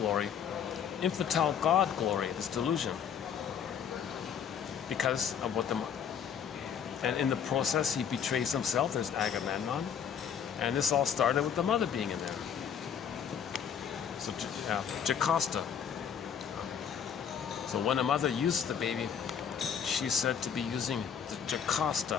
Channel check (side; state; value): right; quieter; 7.9 dB